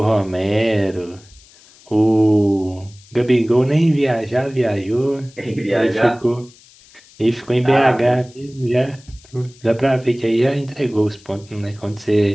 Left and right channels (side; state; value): left; noise; hiss, 26 dB below the sound